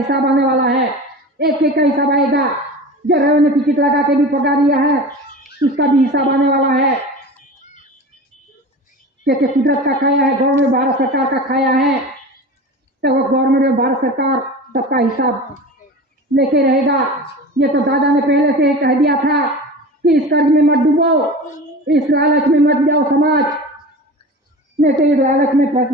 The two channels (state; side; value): normal; both; correlation 0.33